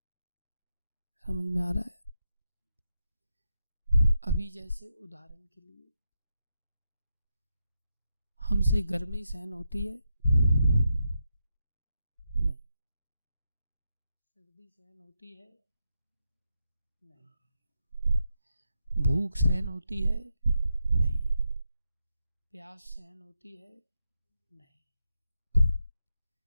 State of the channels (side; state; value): both; inverted; correlation -0.85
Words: समझ में आ रहा है? अभी जैसे उदाहरण के लिए हमसे गर्मी सहन होती है? नहीं। सर्दी सहन होती है? नहीं। भूख सहन होती है? नहीं। प्यास सहन होती है? नहीं।